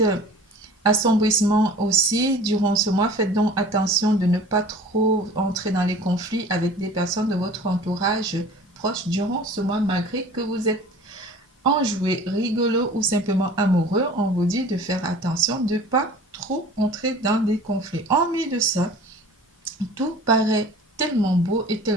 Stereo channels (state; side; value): normal; both; correlation 0.44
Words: assombrissement aussi durant ce mois. Faites donc attention de ne pas trop entrer dans les conflits avec des personnes de votre entourage proche durant ce mois, malgré que vous êtes enjoué, rigolo ou simplement amoureux, on vous dit de faire attention, de ne pas trop entrer dans des conflits. En plus de ça, tout paraît tellement beau et